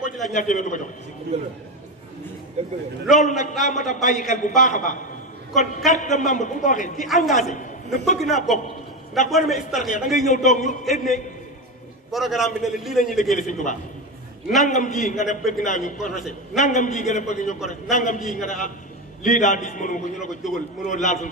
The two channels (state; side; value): normal; both; correlation 0.16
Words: ci laaj ñaar téeméer du ko jox loolu nag daa mat a bàyyi xel bu baax a baax kon carte de membre bu ko waxee ci engagé ne bëgg naa bokk ndax boo demee Hizbut-Tarqiyyah da ngay ñëw toog ñu indi programme bi ne la lii la ñuy liggéeyal Sëñ Tuubaa nangam ji nga ne bëgg naa ñu corrigé nangam ji nga ne bëgg ñu corrigé nangam ji nga ne ah lii daal diis mënu ko ñu la ko jógal mënoo laal suñu